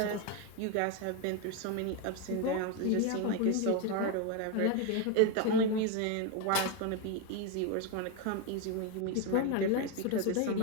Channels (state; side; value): different; both; correlation 0.02